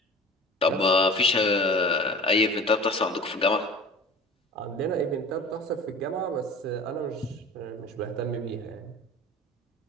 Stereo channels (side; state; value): both; normal; correlation 0.39